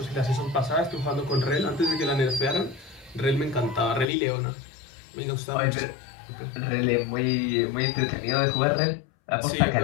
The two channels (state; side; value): drops out; right; at 4.0 s